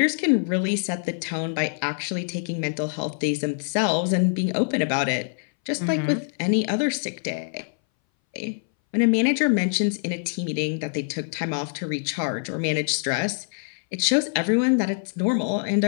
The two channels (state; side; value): silent; right; 60 dB below the other